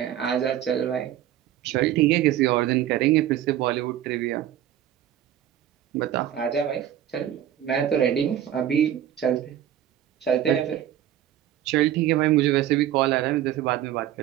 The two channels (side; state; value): left; quieter; 11.5 dB